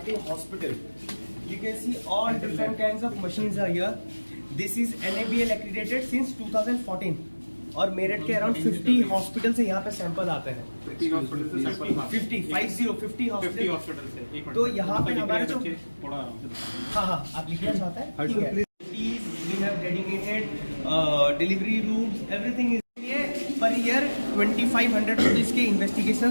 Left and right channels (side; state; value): both; inverted; correlation -1.00